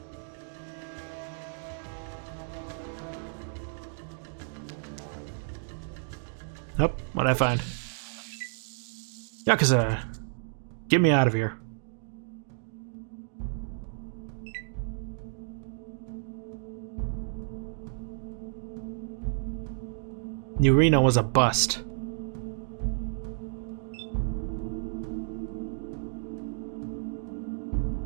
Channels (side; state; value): left; silent; digital silence